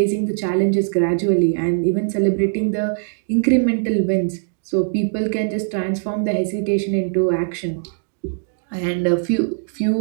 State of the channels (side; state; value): left; silent; digital silence